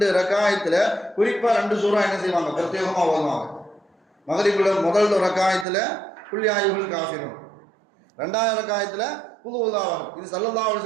ரக்காயத்தில் குறிப்பாக 2 சூறா என்ன செய்வாங்க, பிரத்யேகமாக ஓதுவாங்க. மக்ரிபில் முதல் ரக்காயத்தில் குல் யா அய்யுஹல் காஃபிரூன், 2வது ரக்காயத்தில் குல் ஹுவல்லாஹு அஹத். இது ஸல்லல்லாஹு அலைஹி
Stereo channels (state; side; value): drops out; left; at 5.7 s